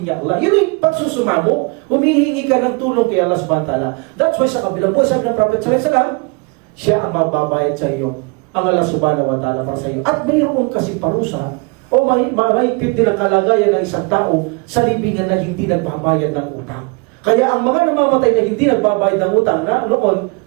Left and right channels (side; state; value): left; quieter; 29.8 dB